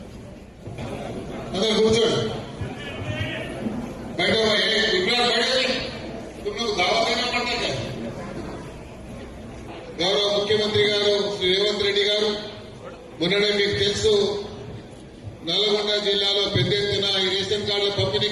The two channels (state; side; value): identical; both; correlation 1.00